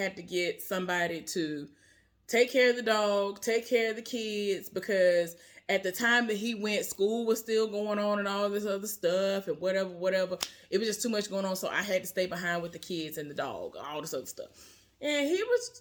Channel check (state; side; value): identical; both; correlation 1.00